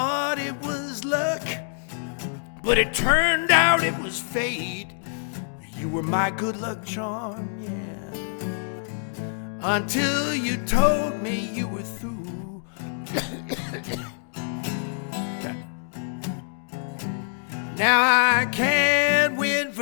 it was luck, but it turned out it was fate. You were my good luck charm, yeah. Until you told me you were through. Now I can't win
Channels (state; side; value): silent; right; digital silence